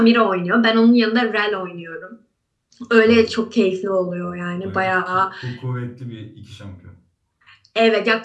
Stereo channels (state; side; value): identical; both; correlation 1.00